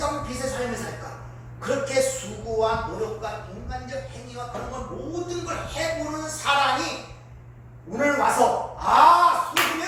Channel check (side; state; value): both; identical; correlation 1.00